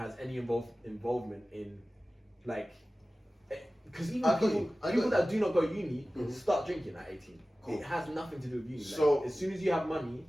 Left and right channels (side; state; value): both; normal; correlation 0.96